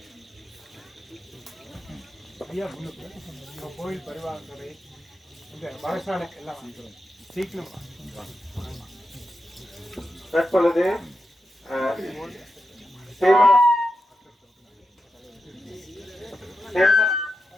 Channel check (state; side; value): normal; both; correlation 0.88